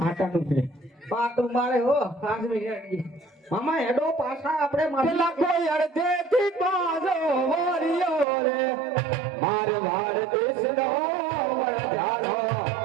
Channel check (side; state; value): left; drops out; at 8.2 s